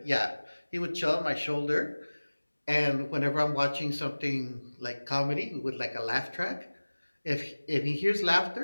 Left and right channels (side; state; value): both; inverted; correlation -1.00